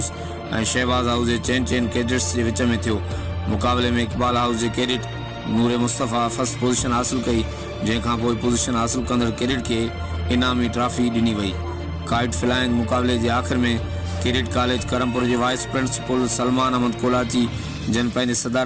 और शहबाज हाउस के चैन कैडेट्स के विच में थियो। मुकाबले में इकबाल हाउस के कैडेट नूर मुस्तफ़ा फर्स्ट पोजीशन हासिल कई, जैखां पोइ पोजीशन हासिल कंदड़ कैडेट के इनामी ट्रॉफी ॾिनी वई। काइट फ्लाइंग मुकाबले के आखिर में किरीट कॉलेज करमपुर के वाइस प्रिंसिपल सलमान अहमद कोलाची जन पंहिंजे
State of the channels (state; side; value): identical; both; correlation 1.00